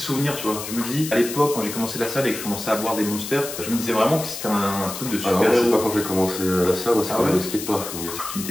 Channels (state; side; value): noise; left; hiss, 8 dB below the sound